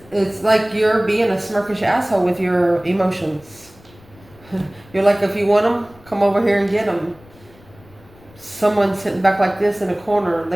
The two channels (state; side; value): noise; left; rumble, 26 dB below the sound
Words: it's like you're being a smirkish asshole with your emotions. You're like, if you want them, come over here and get them. Someone's sitting back like this in a corner.